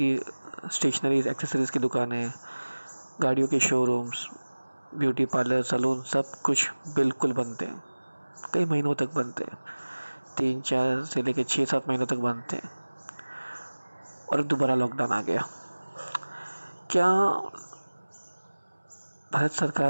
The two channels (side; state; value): both; inverted; correlation -1.00